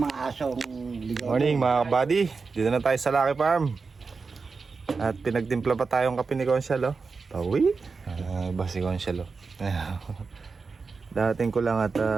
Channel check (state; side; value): quieter; left; 4.6 dB